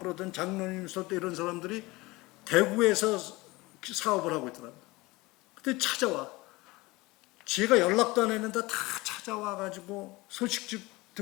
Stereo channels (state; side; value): quieter; right; 21.8 dB